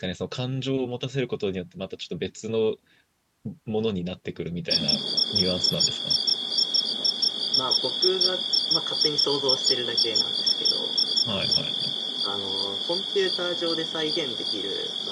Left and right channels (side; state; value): both; identical; correlation 1.00